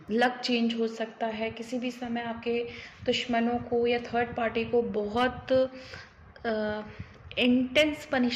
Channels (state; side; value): identical; both; correlation 1.00